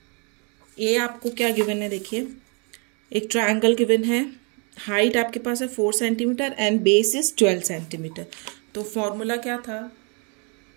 ए आपको क्या गिवन है, देखिए एक ट्रायंगल गिवन है, हाइट आपके पास है 4 centimeter and base is 12 centimeter. तो फॉर्मूला क्या था,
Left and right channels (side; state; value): left; quieter; 35.2 dB